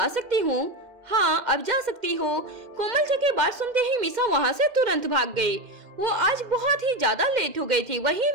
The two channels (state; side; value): late; left; 2.1 ms